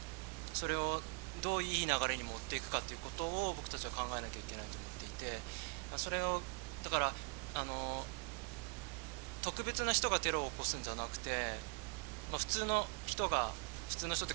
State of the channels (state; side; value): quieter; left; 31.7 dB